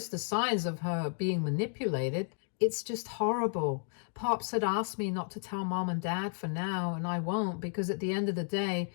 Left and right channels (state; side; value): silent; right; 56 dB below the other